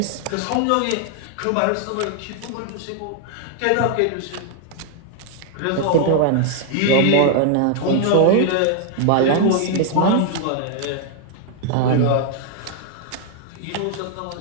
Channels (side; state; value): both; different; correlation 0.00